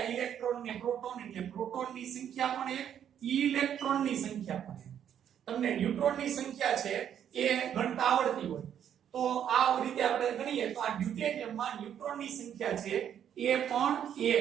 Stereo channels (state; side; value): quieter; left; 9.4 dB